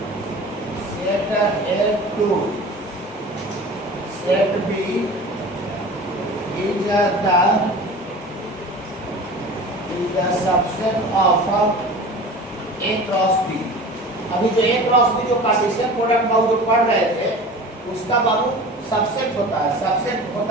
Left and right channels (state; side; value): normal; both; correlation 0.38